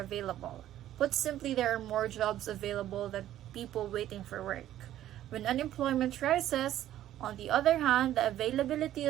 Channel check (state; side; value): quieter; left; 12.6 dB